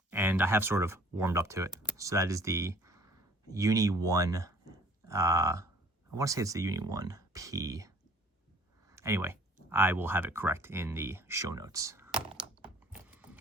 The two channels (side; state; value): both; normal; correlation 0.54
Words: and I have sort of warmed up to it. So that is the Uni 1, I want to say it's the Uni 1P. Anyway, I will have it correct in the show notes.